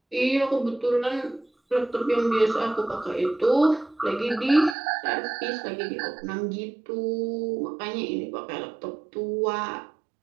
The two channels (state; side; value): drops out; left; at 4.8 s